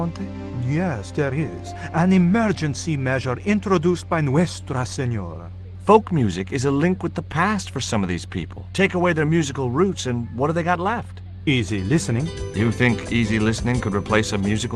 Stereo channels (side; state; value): both; identical; correlation 1.00